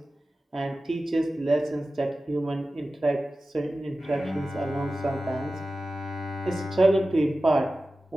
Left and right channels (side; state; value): both; normal; correlation 0.95